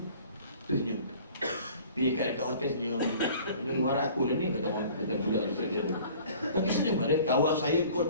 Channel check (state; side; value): inverted; both; correlation -0.49